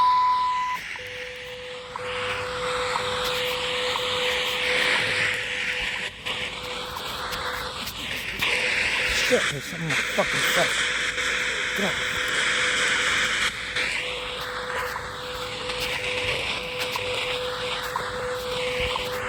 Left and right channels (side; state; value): both; identical; correlation 1.00